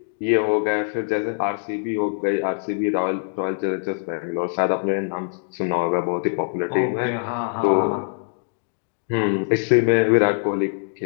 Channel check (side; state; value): right; silent; digital silence